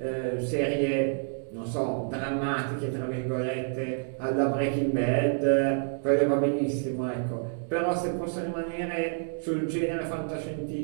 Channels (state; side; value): silent; left; digital silence